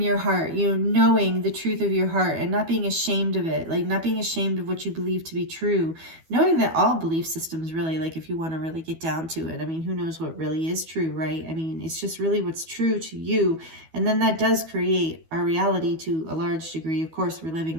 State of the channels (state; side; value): late; left; 12 ms